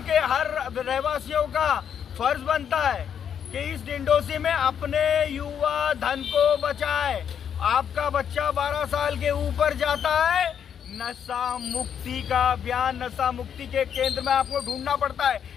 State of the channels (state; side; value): quieter; right; 8.3 dB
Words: हर रहवासियों का फर्ज बनता है कि इस डिंडोसी में अपने युवा धन को बचाए। आपका बच्चा 12 साल के ऊपर जाता है, नशा मुक्ति का अभियान, नशा मुक्ति के केंद्र में आपको ढूंढना पड़ता है।